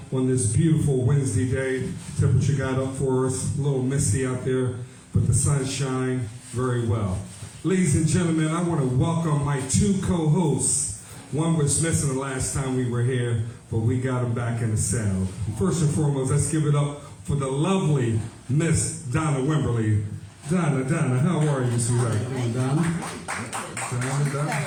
on this beautiful Wednesday day. Temperature got up for us, a little misty out there, but the sun shine very well. Ladies and gentlemen, I want to welcome my two co-hosts. One was missing the last time we were here, but we got him back in the saddle. First and foremost, let's give it up for the lovely Miss Donna Wimberly. Donna, how are you, sweetheart? Donna?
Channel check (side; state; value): both; identical; correlation 1.00